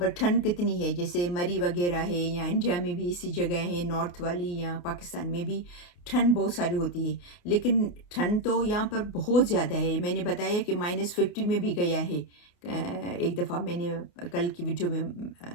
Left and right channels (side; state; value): right; late; 28 ms